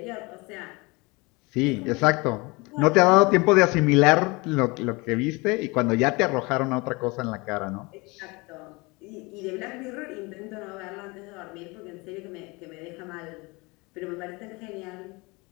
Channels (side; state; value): right; quieter; 25.7 dB